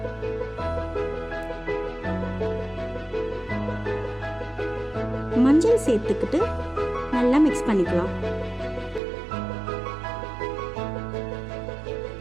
மஞ்சள் சேர்த்துக்கிட்டு நல்லா மிக்ஸ் பண்ணிக்கலாம்.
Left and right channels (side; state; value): left; drops out; at 9.0 s